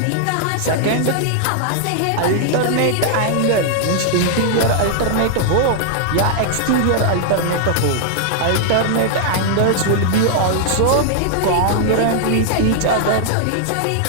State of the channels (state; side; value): different; both; correlation -0.01